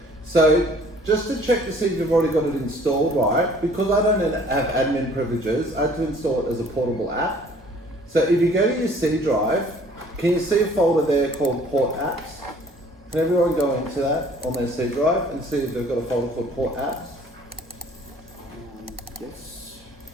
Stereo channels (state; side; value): normal; both; correlation 0.55